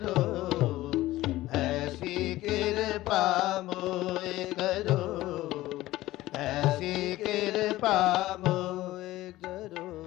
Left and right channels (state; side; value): quieter; right; 16.6 dB